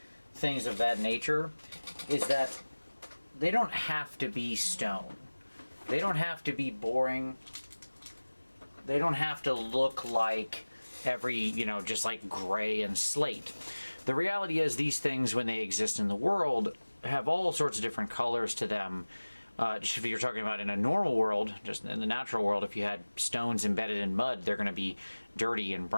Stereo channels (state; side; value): inverted; both; correlation -1.00